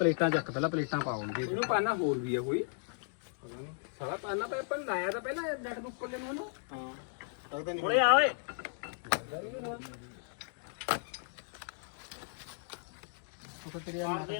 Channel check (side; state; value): right; silent; digital silence